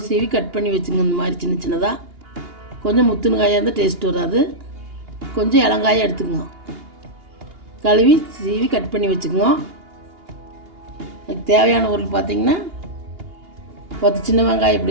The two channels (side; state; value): left; late; 2.8 ms